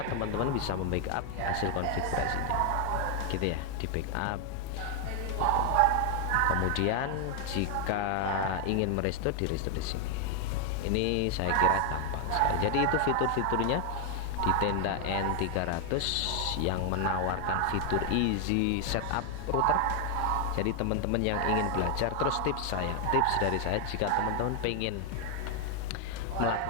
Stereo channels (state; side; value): different; both; correlation 0.00